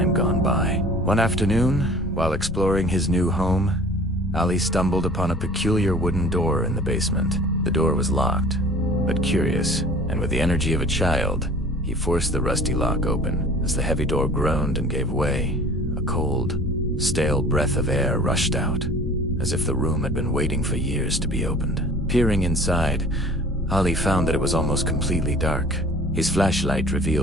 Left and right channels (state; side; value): normal; both; correlation 0.46